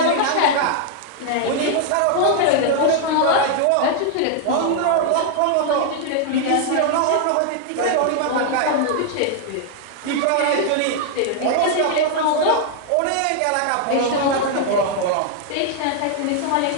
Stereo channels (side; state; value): both; different; correlation 0.00